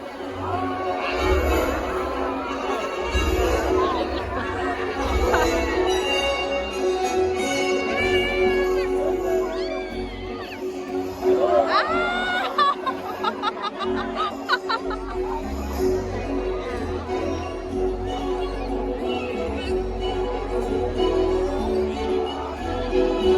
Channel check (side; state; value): both; identical; correlation 1.00